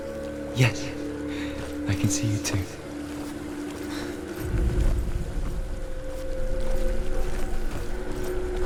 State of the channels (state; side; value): identical; both; correlation 1.00